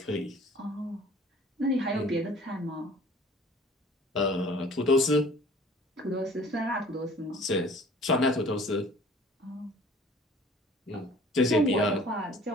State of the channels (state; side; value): normal; both; correlation 0.49